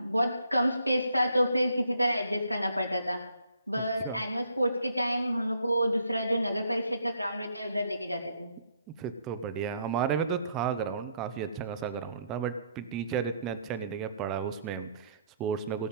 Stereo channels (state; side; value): inverted; both; correlation -0.68